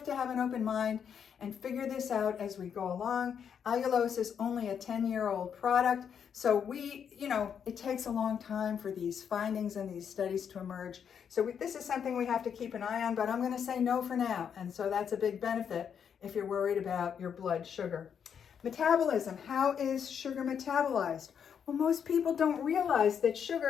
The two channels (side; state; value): right; quieter; 7.7 dB